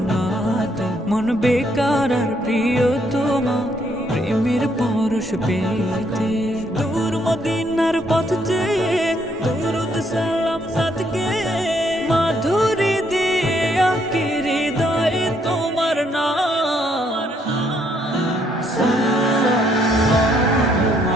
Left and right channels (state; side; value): normal; both; correlation 0.71